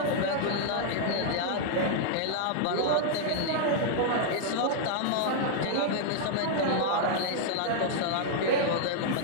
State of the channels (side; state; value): both; different; correlation -0.01